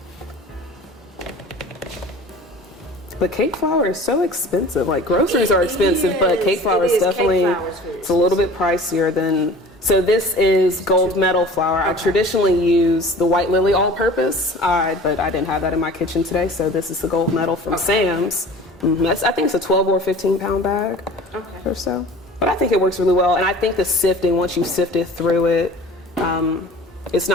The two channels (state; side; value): normal; both; correlation 0.43